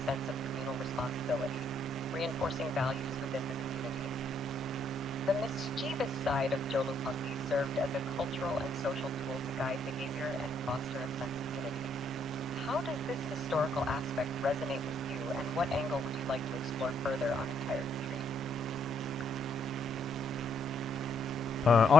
sense of communal responsibility, reinforcing values within the community. The mischievous side of Joulupukki served as a cultural and social tool to guide behavior and foster a sense of unity. How does this historical aspect resonate with you, and what angle would you like to explore further on Entire Retreat?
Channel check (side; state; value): both; normal; correlation 0.71